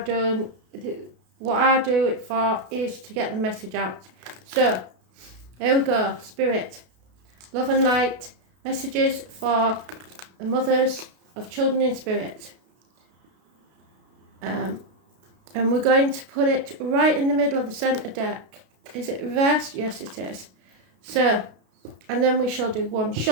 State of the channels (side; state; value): left; late; 33 ms